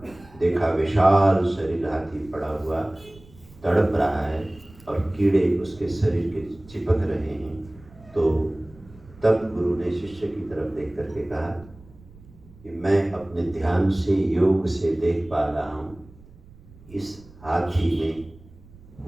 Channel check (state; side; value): noise; right; rumble, 23 dB below the sound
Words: देखा विशाल शरीर हाथी पड़ा हुआ तड़प रहा है और कीड़े उसके शरीर के चिपक रहे हैं। तो तब गुरु ने शिष्य की तरफ देख करके कहा कि मैं अपने ध्यान से, योग से देख पा रहा हूँ, इस हाथी में